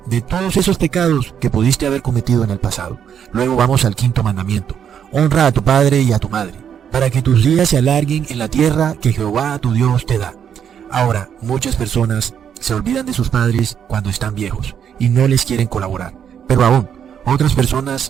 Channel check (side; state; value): left; quieter; 8.4 dB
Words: de todos esos pecados que pudiste haber cometido en el pasado. Luego vamos al quinto mandamiento. Honra a tu padre y a tu madre, para que tus días se alarguen en la tierra que Jehová tu Dios te da. Ahora, muchas personas se olvidan de sus padres cuando están viejos y no les quieren colaborar. Pero aún, otras